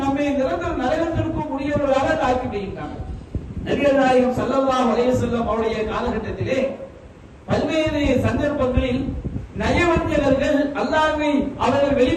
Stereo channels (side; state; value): both; identical; correlation 1.00